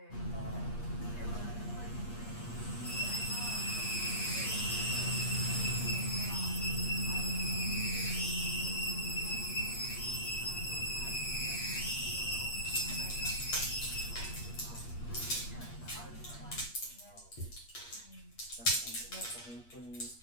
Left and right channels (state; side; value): late; right; 8.5 ms